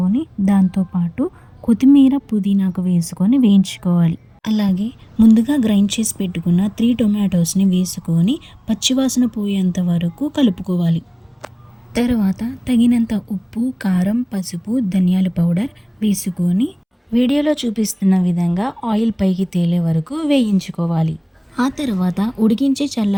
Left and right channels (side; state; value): both; identical; correlation 1.00